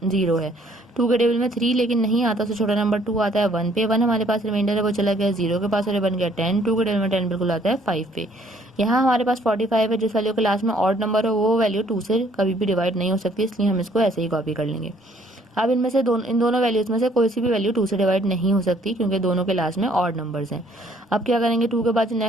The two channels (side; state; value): both; normal; correlation 0.62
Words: 0 है। 2 के टेबल में 3 लेकिन नहीं आता, तो छोटा नंबर 2 आता है 1 पे। 1 हमारे पास रिमाइंडर है, वो चला गया 0 के पास और ये बन गया 10। 2 के टेबल में 10 बिल्कुल आता है 5 पे। यहाँ हमारे पास 45 है, जिस वैल्यू के लास्ट में ऑड नंबर हो वो वैल्यू 2 से कभी भी डिवाइड नहीं हो सकती, इसलिए हम इसको ऐसे ही कॉपी कर लेंगे। अब इनमें से इन दोनों वैल्यूज में से कोई सी भी वैल्यू 2 से डिवाइड नहीं हो सकती क्योंकि दोनों के लास्ट में ऑड नंबर्स हैं। अब क्या करेंगे, 2 के बाद जो